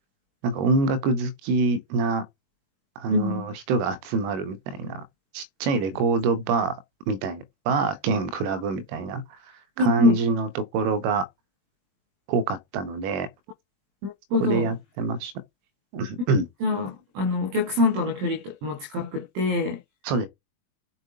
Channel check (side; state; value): left; late; 21 ms